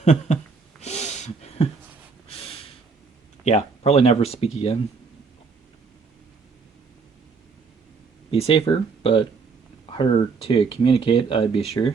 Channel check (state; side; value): quieter; left; 4.9 dB